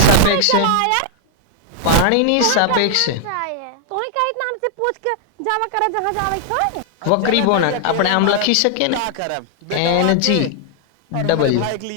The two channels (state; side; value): different; both; correlation 0.00